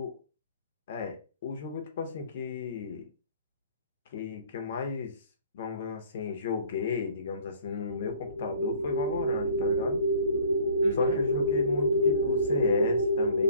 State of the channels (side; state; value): both; inverted; correlation -0.53